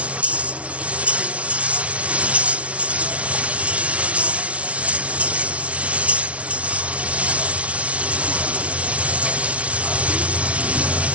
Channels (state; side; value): late; left; 0.063 ms